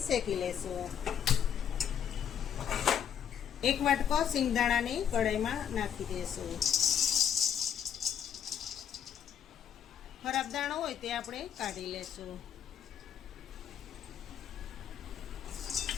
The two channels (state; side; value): quieter; right; 8.7 dB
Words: શેકી લેશું। 1 વાટકો સિંગદાણાને કઢાઈમાં નાખી દેશું। ખરાબ દાણો હોય તે આપણે કાઢી લેશું।